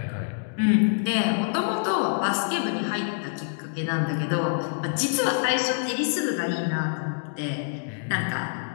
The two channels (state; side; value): silent; right; digital silence